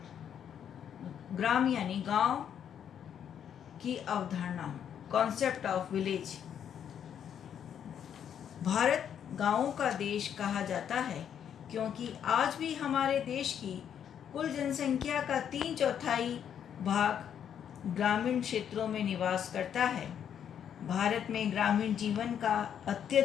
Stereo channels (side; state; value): right; quieter; 8.8 dB